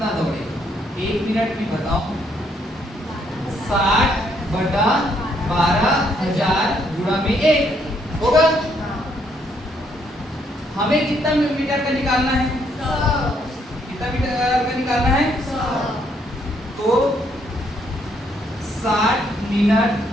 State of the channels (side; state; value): both; normal; correlation 0.71